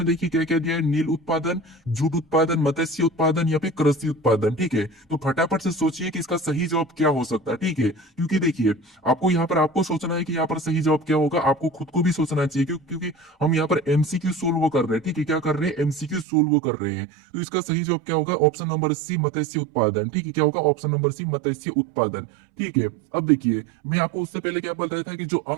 देखिए क्या क्या दिया है, नील उत्पादन, जूट उत्पादन, मत्स्य उत्पादन, या फिर कृषि उत्पादन। ठीक है, तो फटाफट से सोचिए कि इसका सही जवाब क्या हो सकता है। ठीक है, क्योंकि देखिए आपको यहाँ पर आपको सोचना है कि यहाँ पर सही जवाब क्या होगा, आपको खुद को भी सोचना चाहिए क्योंकि हम यहाँ पर एमसीक्यू सोल्व कर रहे हैं। ठीक है, क्या कर रहे हैं, एमसीक्यू सोल्व कर रहे हैं। तो इसका सही जवाब क्या होगा, ऑप्शन नंबर सी, मत्स्य उत्पादन। ठीक है, क्या होगा, ऑप्शन नंबर सी मत्स्य उत्पादन। ठीक है, अब देखिए मैं आपको उससे पहले क्या बताया था कि जो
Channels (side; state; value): left; drops out; at 16.2 s